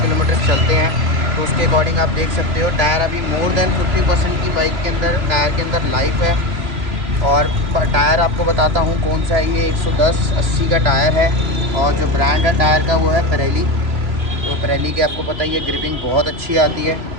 किलोमीटर चलते हैं, तो उसके अकॉर्डिंग आप देख सकते हो टायर अभी मोर देन 50% की बाइक के अंदर, टायर के अंदर लाइफ है। और टायर आपको बताता हूँ कौन सा है, ये 110/80 का टायर है और जो ब्रांड है टायर का वो है पिरेली। तो पिरेली की आपको पता ही है ग्रिपिंग बहुत अच्छी आती है।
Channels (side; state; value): left; late; 3.0 ms